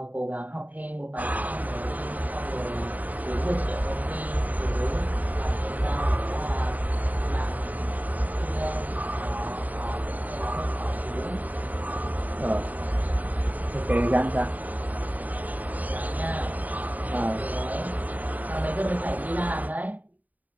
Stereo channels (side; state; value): left; late; 0.077 ms